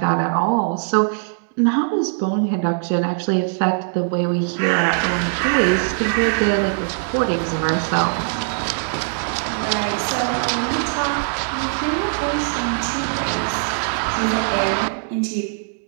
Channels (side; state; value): left; silent; digital silence